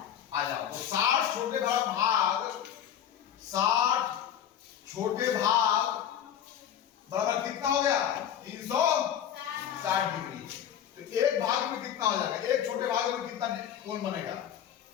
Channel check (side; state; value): right; quieter; 9.7 dB